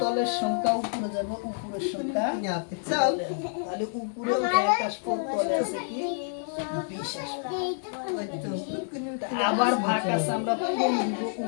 তলের সংখ্যা উপরে যাবে, উপরের সংখ্যা তলে আসবে। তাহলে উপরে 1 আসবে, তলে আছে কি 20 আসবে। আবার ভাগ আছে আমরা পূরণ দিব,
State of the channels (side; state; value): right; silent; digital silence